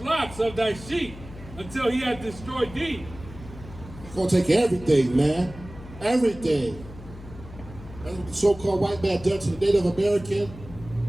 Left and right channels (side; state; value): left; noise; hum, 16 dB below the sound